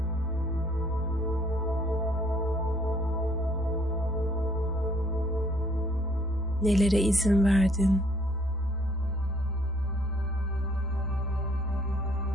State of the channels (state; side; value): normal; both; correlation 0.63